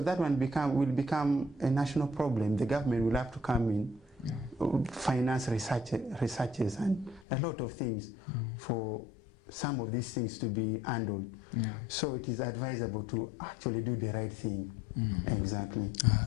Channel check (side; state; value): right; drops out; at 7.2 s